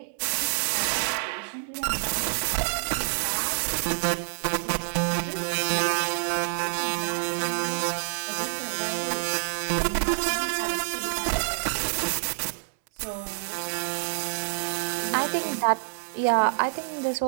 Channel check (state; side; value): silent; left; 60 dB below the other